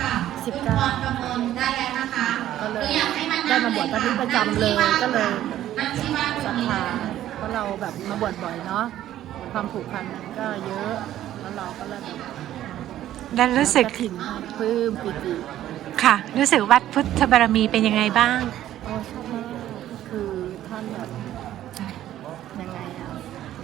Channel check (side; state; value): left; quieter; 12.7 dB